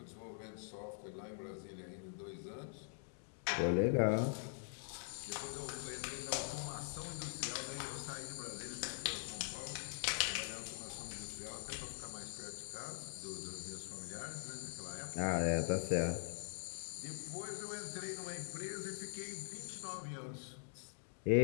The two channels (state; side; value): silent; right; digital silence